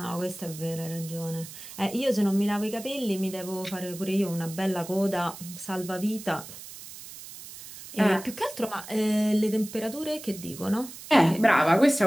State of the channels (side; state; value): right; noise; hiss, 14 dB below the sound